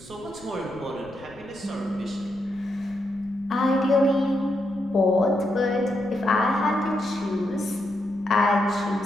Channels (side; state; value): left; noise; rumble, 24 dB below the sound